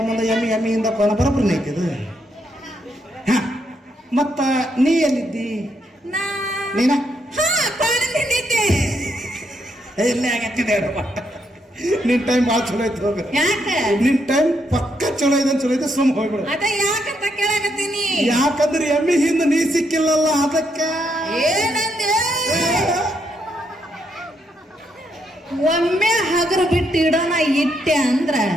ಎಮ್ಮಿಯಿಂದ ಕೊನ ಬರೋಬ್ಬರನೇ ಐತಿದು. ಮತ್ತ ನೀ ಎಲ್ಲಿದ್ದಿ? ನೀನ ಎಲ್ಲಿ ಆಗತ್ತಿದೆ? ನಿನ್ ಟೈಮ್ ಭಾಳ ಚಲೋ ಐತಿ. ಹೋಗ, ನಿನ್ ಟೈಮ್ ಪಕ್ಕ ಚಲೋ ಇದೆ. ಚಲೋ ಇದೆ, ಸುಮ್ ಹೋಗ್ಬಿಡು. ಯಾಕಂತ ಕೇಳಾಕತ್ತೀನಿ. ಯಾಕಂದ್ರೆ ಎಮ್ಮಿ ಹಿಂದ ನೀ ಸಿಕ್ಕಿಲ್ಲಲ್ಲ ಅದಕ್ಕ. ಒಮ್ಮೆ ಹಗರು ಬಿಟ್ಟು ಇಡೋಣ ಇಟ್ಟೆ ಅಂದ್ರ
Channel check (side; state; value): both; normal; correlation 0.77